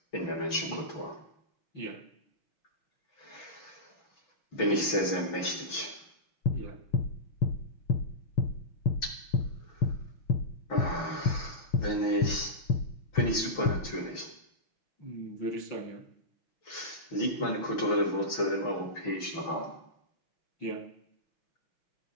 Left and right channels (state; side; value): late; right; 6.1 ms